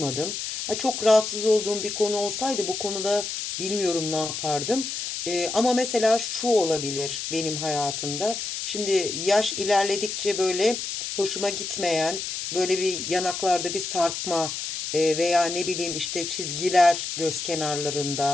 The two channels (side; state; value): left; noise; hiss, 5 dB below the sound